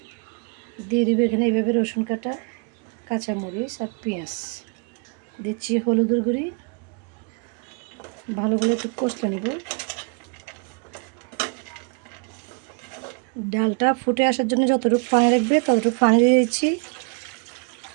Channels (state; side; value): quieter; left; 34.9 dB